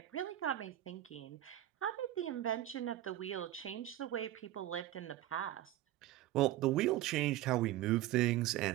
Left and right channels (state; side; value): quieter; left; 14.0 dB